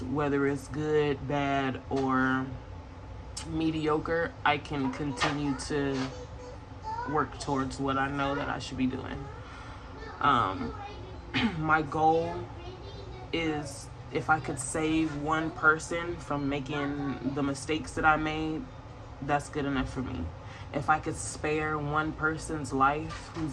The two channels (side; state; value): both; identical; correlation 1.00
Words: whether it's good, bad, or mediocre. I can continue to work towards what I know that I should be doing. My goal is, if I could save one person from making the mistakes that I made, that's good enough for me. If I could spare one person's life